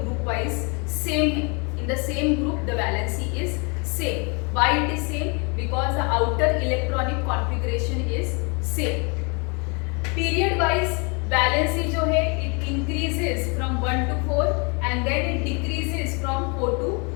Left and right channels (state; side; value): quieter; right; 32.9 dB